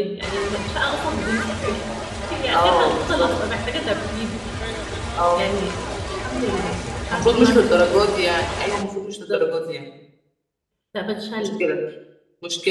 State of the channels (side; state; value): both; identical; correlation 1.00